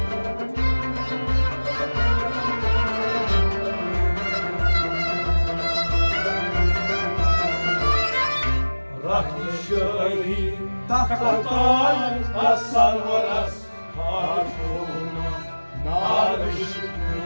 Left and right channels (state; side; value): inverted; both; correlation -1.00